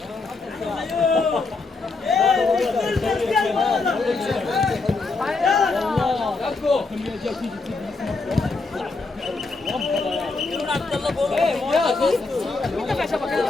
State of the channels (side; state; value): right; quieter; 3.8 dB